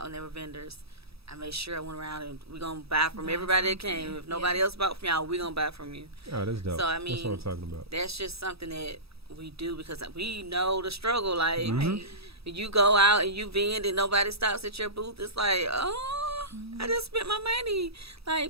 and they were vendors. I made sure I went around and we're gonna buy from everybody that came. If nobody else bought from y'all, we're gonna buy from you. Oh, that's dope. So I that's mean, what I'm talking about. that's just something that we do because we know the struggle. Like you go out and you vend and nobody stops at your booth. It's like, oh, I just spent my money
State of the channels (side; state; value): left; late; 0.77 ms